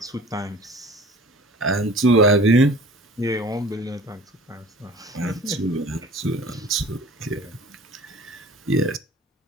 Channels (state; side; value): normal; both; correlation 0.44